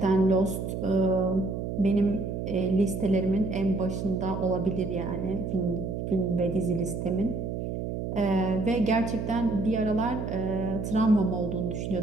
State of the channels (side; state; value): right; noise; hum, 4 dB below the sound